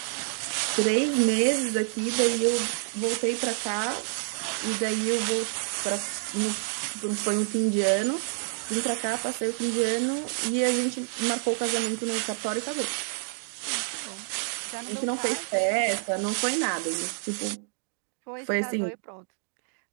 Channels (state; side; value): silent; left; digital silence